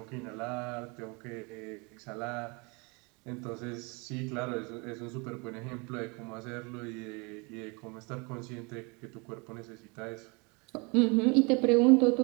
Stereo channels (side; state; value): left; quieter; 30.0 dB